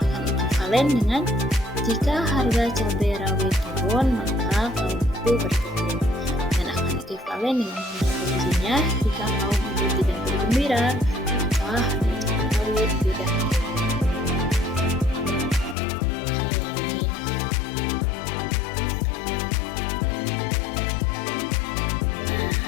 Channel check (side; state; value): right; drops out; at 15.8 s